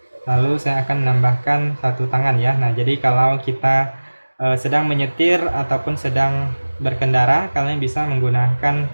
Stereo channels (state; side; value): inverted; both; correlation -1.00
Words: Lalu saya akan menambahkan satu tangan ya. Nah, jadi kalau kita sedang menyetir ataupun sedang berkendara, kalian bisa menggunakan